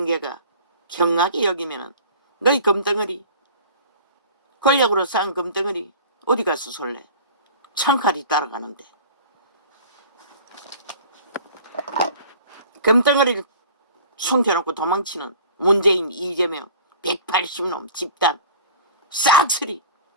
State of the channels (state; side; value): inverted; both; correlation -0.43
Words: 경하게 여기면은 너희 금덩어리, 권력으로 쌓은 금덩어리 어디 가서 솔래. 창칼이 따라가는데. 금덩어리를 숨겨놓고 도망치는 문재인, 이재명, 180놈 집단 싹쓸이